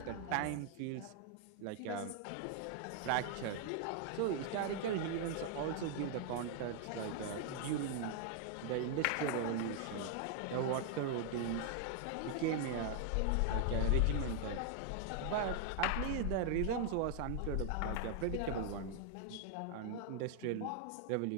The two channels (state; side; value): different; both; correlation 0.00